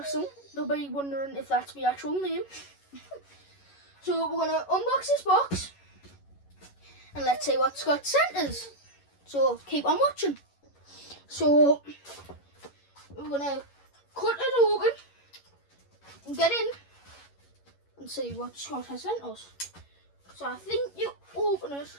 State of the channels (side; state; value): right; late; 11 ms